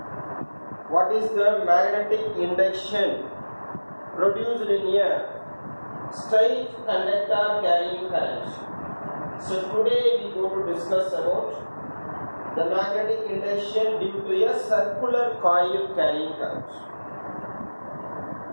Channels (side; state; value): both; inverted; correlation -1.00